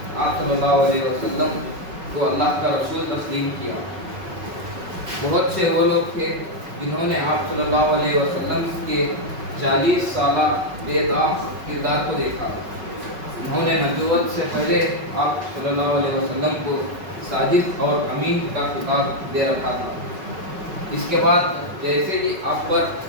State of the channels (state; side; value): late; left; 5.3 ms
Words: آپ صلی اللہ علیہ وسلم کو اللہ کا رسول تسلیم کیا۔ بہت سے وہ لوگ تھے جنہوں نے آپ صلی اللہ علیہ وسلم کے 40 سالہ بے داغ کردار کو دیکھا۔ انہوں نے نبوت سے پہلے آپ صلی اللہ علیہ وسلم کو صادق اور امین کا خطاب دے رکھا تھا۔ اس کے بعد جیسے ہی آپ پر